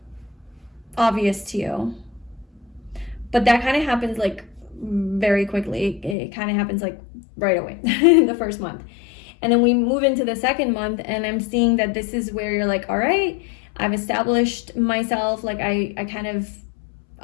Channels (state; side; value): drops out; right; at 6.2 s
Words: obvious to you. But that kind of happens like very quickly. It kind of happens like right away in the first month. And then we move into the second month, and I'm seeing that this is where you're like, all right, I've established myself. Like I kind of,